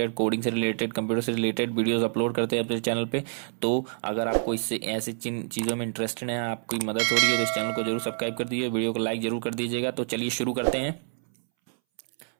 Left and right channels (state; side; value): silent; left; 60 dB below the other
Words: कोडिंग से रिलेटेड, कंप्यूटर से रिलेटेड वीडियोस अपलोड करते हैं अपने चैनल पे। तो अगर आपको इससे ऐसे चीज़ों में इंटरेस्टेड है, आपकी मदद हो रही है, तो इस चैनल को जरूर सब्सक्राइब कर दीजिए, वीडियो को लाइक जरूर कर दीजिएगा। तो चलिए शुरू करते हैं।